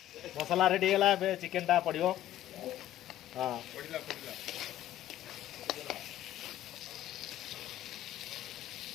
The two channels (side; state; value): right; quieter; 13.0 dB